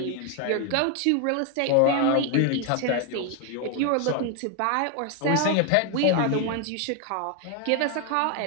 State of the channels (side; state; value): both; different; correlation 0.01